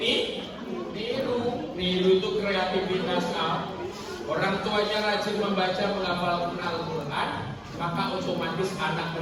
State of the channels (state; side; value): identical; both; correlation 1.00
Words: niru itu kreativitas. Orang tuanya rajin membaca, menghafalkan Al-Quran, maka otomatis anak